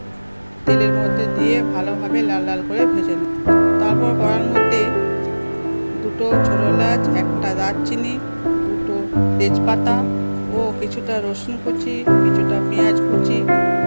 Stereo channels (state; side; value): inverted; both; correlation -1.00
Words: তেলের মধ্যে দিয়ে ভালোভাবে লাল লাল করে ভেজে নেব। তারপর কড়ার মধ্যে দুটো ছোটো এলাচ, একটা দারচিনি, দুটো তেজপাতা ও কিছুটা রসুন কুচি, কিছুটা পেঁয়াজ কুচি